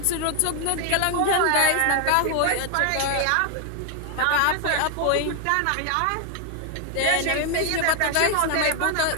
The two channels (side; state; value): both; different; correlation 0.00